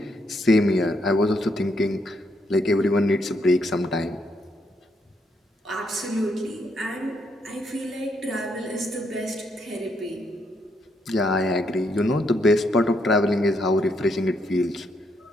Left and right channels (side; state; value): both; normal; correlation 0.76